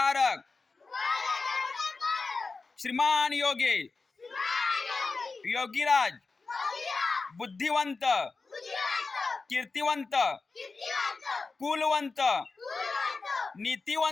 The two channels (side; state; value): right; quieter; 4.1 dB